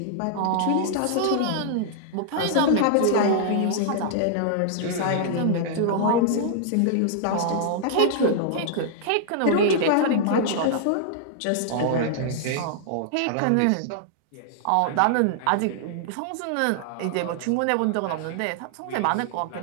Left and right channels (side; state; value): both; different; correlation -0.01